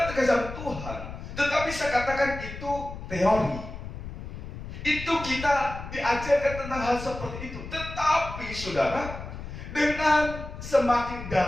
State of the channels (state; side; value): noise; left; rumble, 10 dB below the sound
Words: terkasih Tuhan, tetapi saya katakan itu teori. Itu kita diajarkan tentang hal seperti itu. Tetapi saudara, dengan semakin